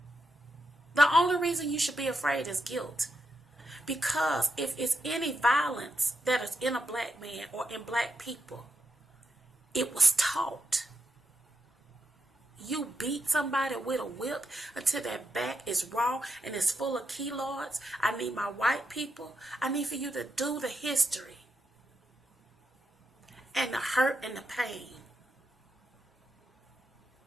The only reason you should be afraid is guilt. Because if it's any violence that is in a black man or in black people, it was taught. You beat somebody with a whip until their back is raw and it's full of keloids. I need my white people. I need for you to do the history and the hurt and the pain.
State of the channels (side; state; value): both; normal; correlation 0.84